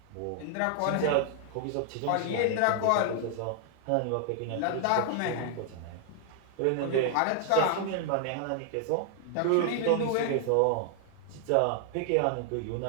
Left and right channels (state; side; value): different; both; correlation 0.00